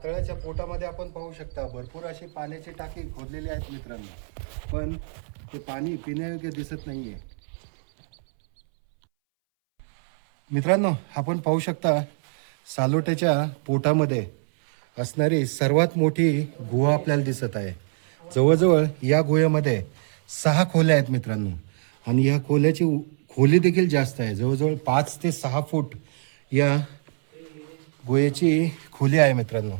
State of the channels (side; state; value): left; silent; 62 dB below the other